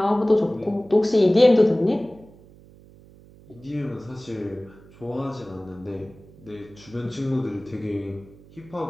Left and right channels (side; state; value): right; noise; hum, 24 dB below the sound